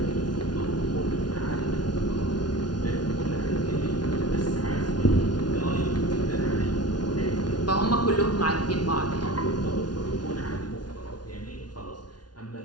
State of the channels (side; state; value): right; late; 0.70 ms